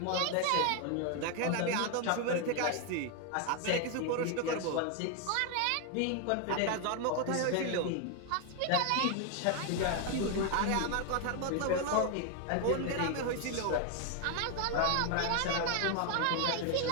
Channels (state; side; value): different; both; correlation 0.01